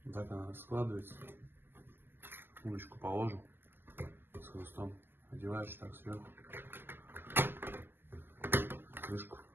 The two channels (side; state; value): left; late; 0.10 ms